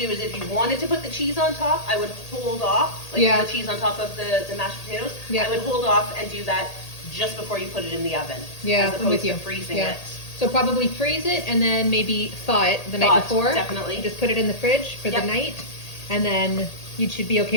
is if you wanted to put the cheese on top, I would hold off, like Yeah. the cheese on top of the mashed potatoes. Yeah. I would hold off and do that just before you put it in the oven. Yeah, as I'm opposed with you. to freezing Yeah. it. So probably freeze it and then maybe thaw it the Thaw night it, before. definitely. Just put it in the fridge for Yep. the night, and then you should be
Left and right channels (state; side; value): late; right; 1.8 ms